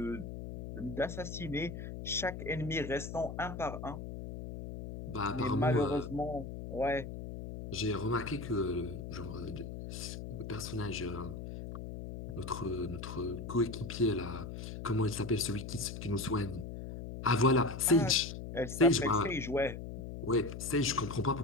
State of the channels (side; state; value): left; noise; hum, 8 dB below the sound